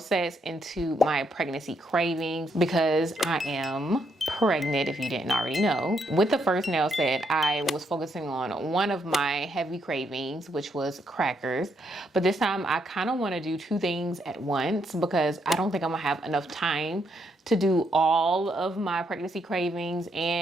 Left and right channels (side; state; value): both; normal; correlation 0.76